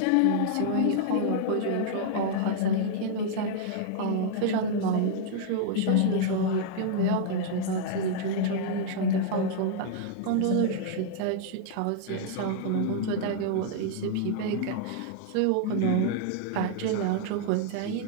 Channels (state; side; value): different; both; correlation -0.01